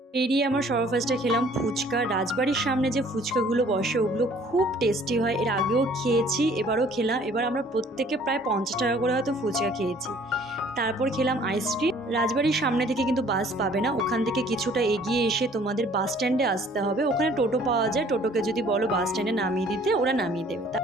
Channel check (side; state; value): both; normal; correlation 0.56